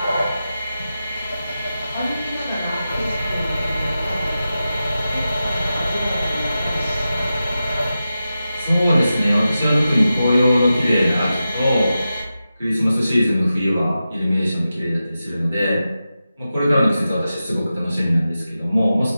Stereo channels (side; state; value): both; inverted; correlation -0.92